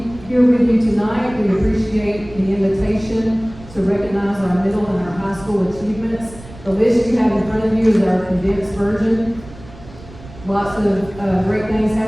here with you tonight. We appreciate the invitation to recognize our middle and our high school achievements. The list you have in front of you is our condensed version. Lots of great things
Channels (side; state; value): right; noise; rumble, 18 dB below the sound